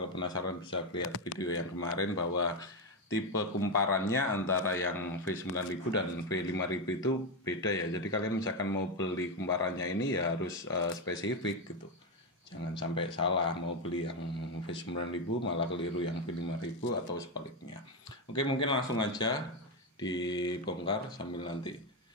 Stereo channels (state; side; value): normal; both; correlation 0.08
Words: penasaran bisa lihat video yang kemarin bahwa tipe kumparannya antara yang V9000 dan V5000 itu beda ya. Jadi kalian misalkan mau beli kumparannya ini ya harus spesifik gitu. Jangan sampai salah mau beli yang V9000 malah keliru yang V5000 atau sebaliknya. Oke, mungkin langsung aja dibongkar sambil nanti